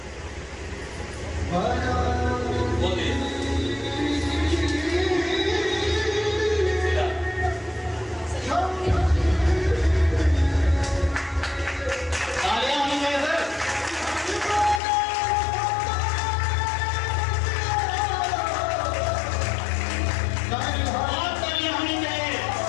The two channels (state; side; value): drops out; right; at 14.8 s